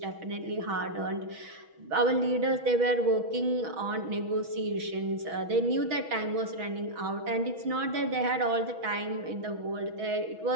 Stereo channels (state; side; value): late; left; 6.2 ms